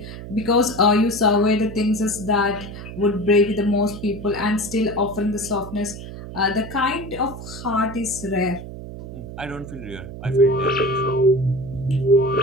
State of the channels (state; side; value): noise; right; hum, 11 dB below the sound